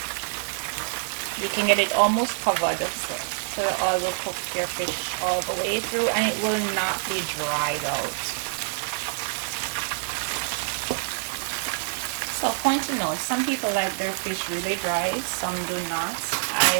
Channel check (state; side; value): silent; left; 61 dB below the other